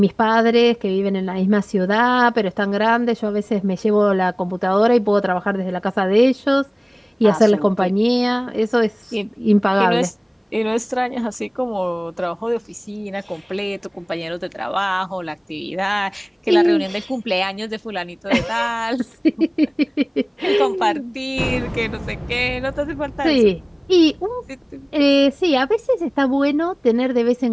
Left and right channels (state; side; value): identical; both; correlation 1.00